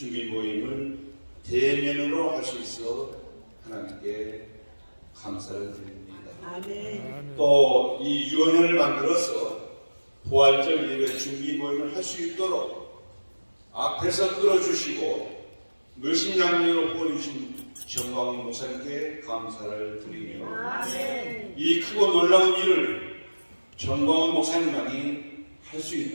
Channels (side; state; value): both; inverted; correlation -1.00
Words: 모임을 대면으로 할 수 있어 하나님께 감사를 드립니다. 아멘. 또 이 유언을 만들어서 부활절 예배 준비 모임을 할 수 있도록 앞에서 끌어주시고 물신양리로 보내주신 정광훈 목사님께 감사를 드리며 아멘. 이 크고 놀라운 일을 정광훈 목사님만이 할 수